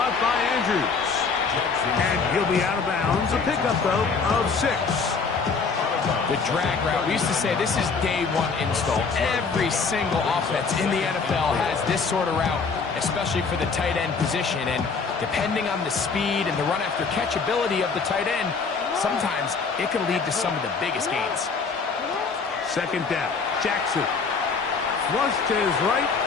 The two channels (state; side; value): quieter; right; 5.0 dB